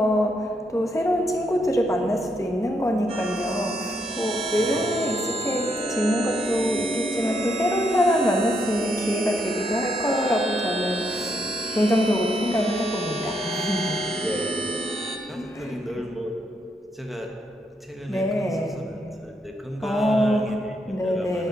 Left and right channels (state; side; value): normal; both; correlation 0.77